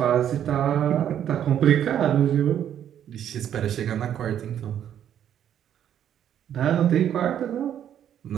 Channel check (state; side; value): quieter; left; 10.0 dB